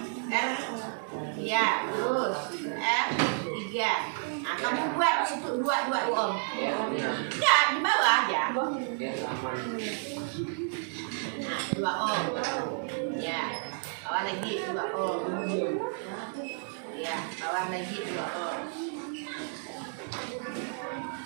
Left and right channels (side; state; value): left; silent; 57 dB below the other